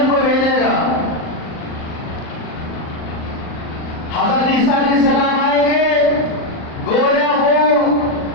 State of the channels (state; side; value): late; right; 38 ms